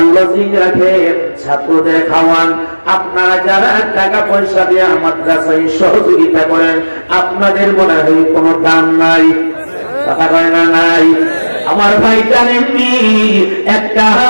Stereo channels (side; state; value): both; inverted; correlation -1.00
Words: লজিং রাখেন, ছাত্রদের খাওয়ান, আপনারা যারা টাকা পয়সা দিয়ে মাদ্রাসায় সহযোগিতা করেন, আপনাদের মনে হয় কোনো দাম নাই? কথা কয় না নাই? আমার ভাই জানেননি, একটা